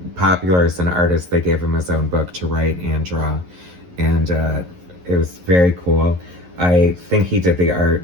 popular as an artist, they gave him his own book to write and draw. And it was very cool. I think he did the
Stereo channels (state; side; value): late; left; 11 ms